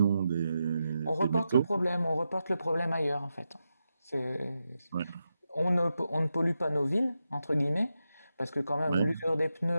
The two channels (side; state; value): both; inverted; correlation -0.88